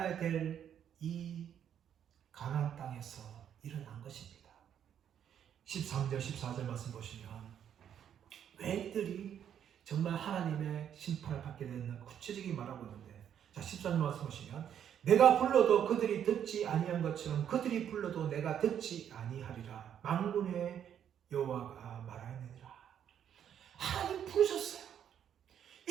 될 이 가나안 땅에서 일어난 것입니다. 13절 14절 말씀 보시면 왜 이들이 정말 하나님의 심판을 받게 됐나 구체적인 말하고 있는데 자 13절 말씀 보시면 내가 불러도 그들이 듣지 아니한 것처럼 그들이 불러도 내가 듣지 아니하리라 만군의 여호와가 말하느니라. 하나님 부르셨어요.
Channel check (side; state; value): left; quieter; 9.3 dB